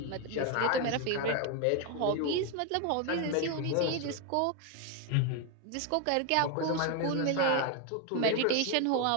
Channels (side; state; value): both; different; correlation 0.01